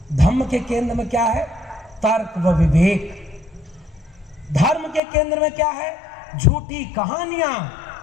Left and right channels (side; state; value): right; drops out; at 5.0 s